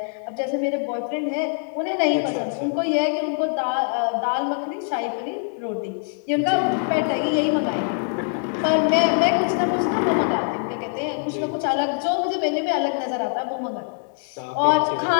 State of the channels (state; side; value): silent; right; 63 dB below the other